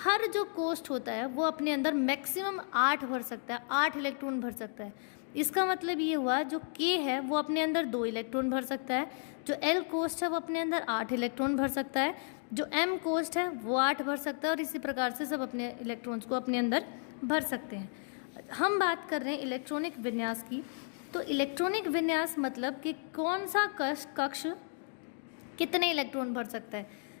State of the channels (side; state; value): right; silent; 56 dB below the other